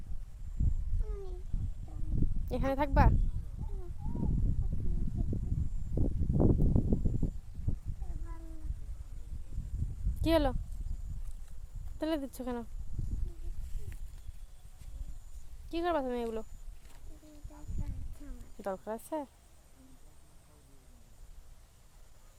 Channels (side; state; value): both; identical; correlation 1.00